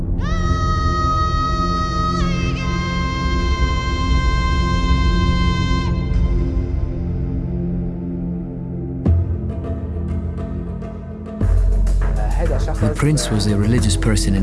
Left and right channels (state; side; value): identical; both; correlation 1.00